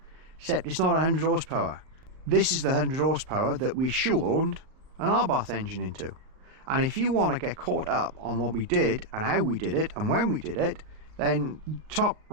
except it's not 100 horsepower. This is the 100 horsepower that we shoehorned an Abarth engine into. And if you want to get caught up on what we did and how we did it and when we did it, then top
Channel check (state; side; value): late; left; 38 ms